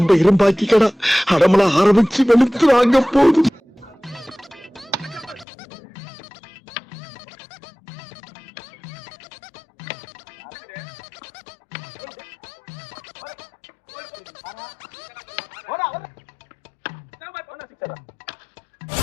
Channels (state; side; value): drops out; right; at 5.5 s